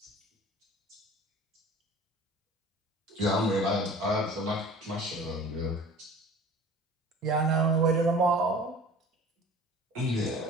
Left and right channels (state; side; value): normal; both; correlation 0.43